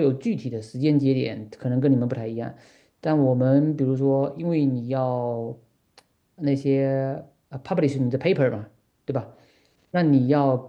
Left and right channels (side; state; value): both; identical; correlation 1.00